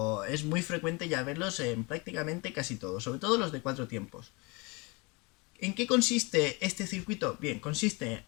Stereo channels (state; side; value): quieter; right; 27.9 dB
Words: es muy frecuente ya verlos en prácticamente casi todos, sobre todo los de 4 tiempos. ¿En qué consiste este circuito? Bien, consiste